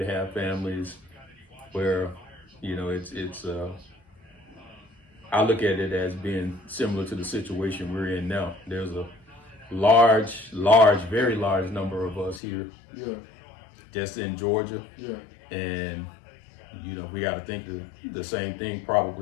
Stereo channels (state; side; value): drops out; right; at 12.4 s